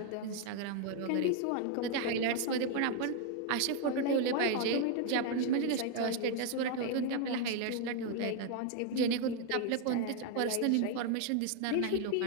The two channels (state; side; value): different; both; correlation 0.01